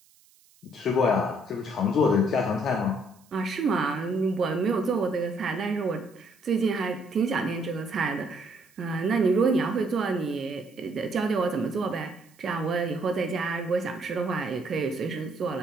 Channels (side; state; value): right; noise; hiss, 30 dB below the sound